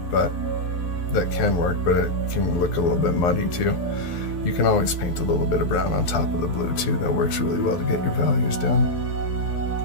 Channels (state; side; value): late; right; 12 ms